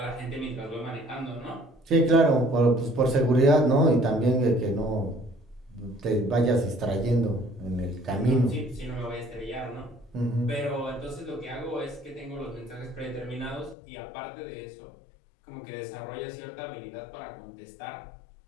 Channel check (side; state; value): right; drops out; at 13.8 s